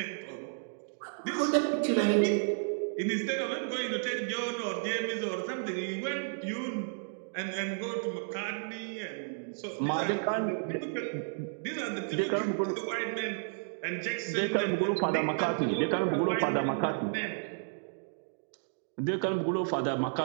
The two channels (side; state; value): left; silent; digital silence